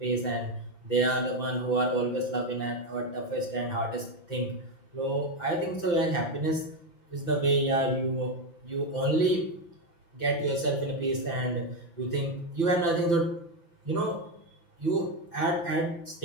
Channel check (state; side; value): late; right; 5.9 ms